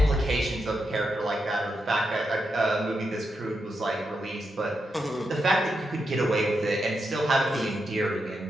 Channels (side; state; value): both; normal; correlation 0.85